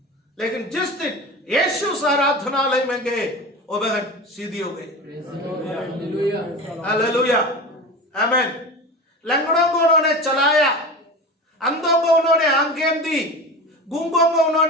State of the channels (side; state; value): both; normal; correlation 0.30